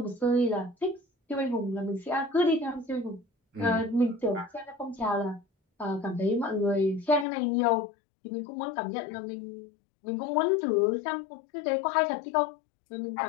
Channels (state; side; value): drops out; right; at 7.2 s